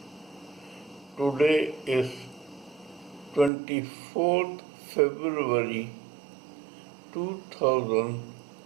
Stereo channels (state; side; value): drops out; left; at 3.5 s